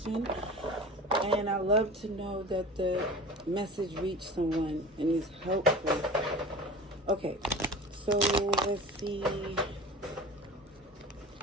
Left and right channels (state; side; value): normal; both; correlation 0.36